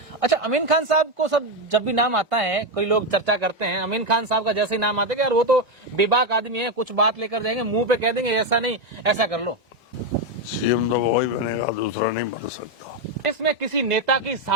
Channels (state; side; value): normal; both; correlation 0.08